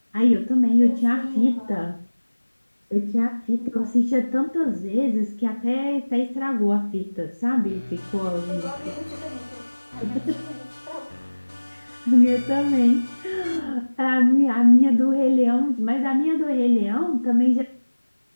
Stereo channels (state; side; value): inverted; both; correlation -1.00